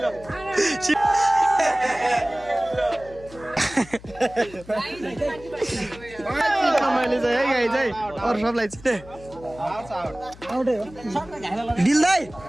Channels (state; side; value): noise; left; hum, 20 dB below the sound